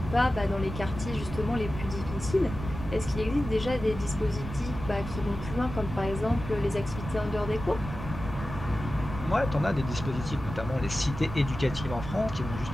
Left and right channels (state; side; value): noise; right; rumble, 9 dB below the sound